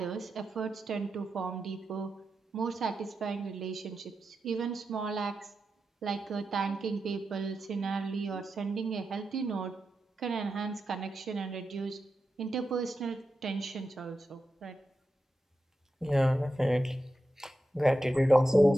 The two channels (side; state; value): both; normal; correlation 0.89